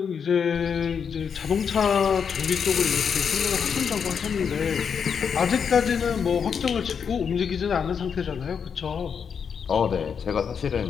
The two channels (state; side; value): quieter; right; 6.8 dB